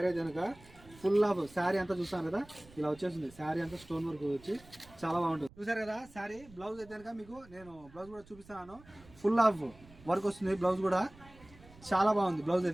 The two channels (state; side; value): noise; right; rumble, 23 dB below the sound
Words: అయితే కనుక. ఫుల్ ఆఫ్ శారీ అంతా చూస్తాను కదా, ఇలా వచ్చేస్తుంది. శారీ అంతా స్టోన్ వర్క్ వచ్చి చాలా బాగుంటుంది. చూసారు కదా శారీ. బ్లౌజ్ అయితే కనుక మీకు నేను బ్లౌజ్ కూడా చూపిస్తాను. ఫుల్ ఆఫ్ వర్క్ వస్తుంది బ్లౌజ్ కూడా, చాలా బాగుంది బ్లౌజ్